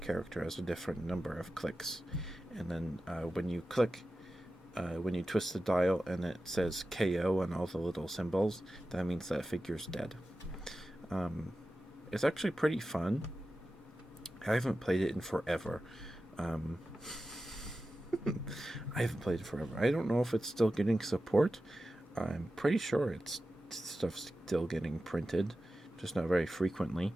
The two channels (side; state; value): both; normal; correlation 0.93